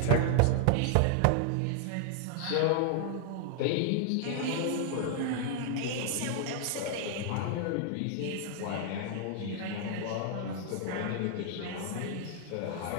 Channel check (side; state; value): both; different; correlation 0.00